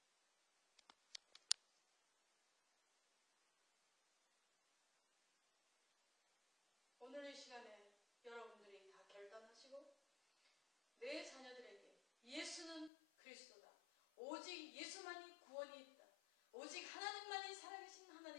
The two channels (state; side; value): drops out; right; at 12.9 s